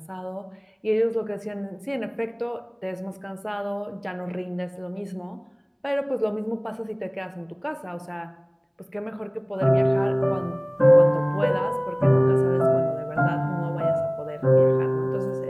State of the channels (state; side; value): identical; both; correlation 1.00